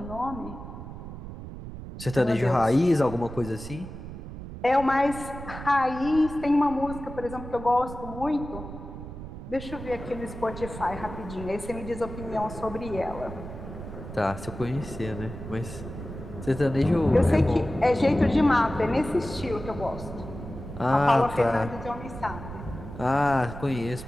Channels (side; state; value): right; noise; rumble, 11 dB below the sound